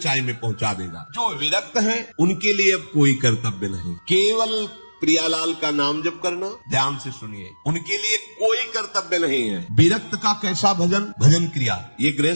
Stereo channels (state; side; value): inverted; both; correlation -1.00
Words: में पहुंचा देगा। जो विरक्त हैं उनके लिए अब कोई कर्तव्य नहीं, केवल प्रियालाल का नाम जप करना। ध्यान से सुनिए, उनके लिए कोई कर्तव्य नहीं है। विरक्त का कैसा भजन, भजन क्रिया, ये